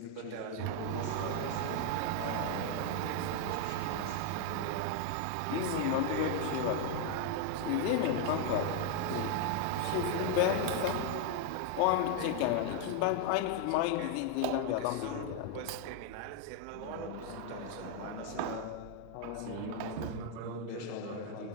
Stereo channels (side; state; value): both; different; correlation 0.01